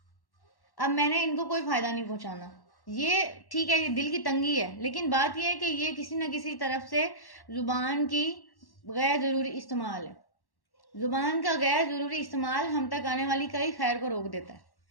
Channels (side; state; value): right; late; 1.1 ms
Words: اب میں نے ان کو کوئی فائدہ نہیں پہنچانا. یہ ٹھیک ہے, یہ دل کی تنگی ہے, لیکن بات یہ ہے کہ یہ کسی نہ کسی طرف سے زبان کی غیر ضروری استعمال ہے. زبان کا غیر ضروری استعمال ہم تک آنے والی کئی خیر کو روک دیتا ہے.